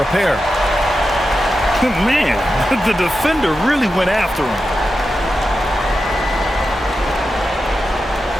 a pair. Man, the defender really went after him.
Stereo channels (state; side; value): normal; both; correlation 0.90